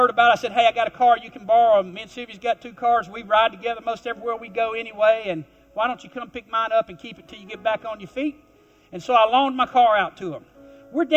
about it. I said, hey, I got a car you can borrow. Me and Sylvia's got 2 cars. We ride together most everywhere we go anyway, and why don't you come pick mine up and keep it till you get back on your feet? And so I loaned my car out to them. We're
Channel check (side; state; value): both; identical; correlation 1.00